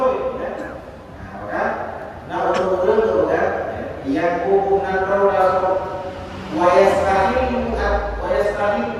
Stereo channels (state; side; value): identical; both; correlation 1.00